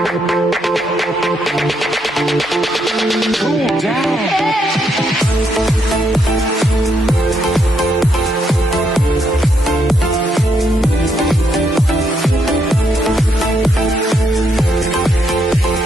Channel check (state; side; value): normal; both; correlation 0.76